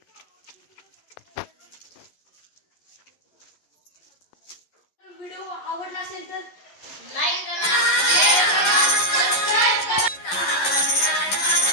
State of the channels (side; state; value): right; late; 11 ms